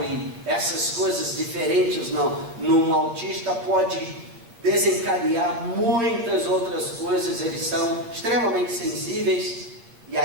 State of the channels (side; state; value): left; late; 8.8 ms